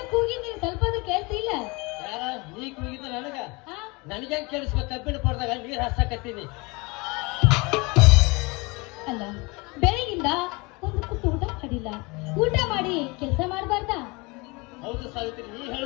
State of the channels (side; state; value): right; quieter; 26.6 dB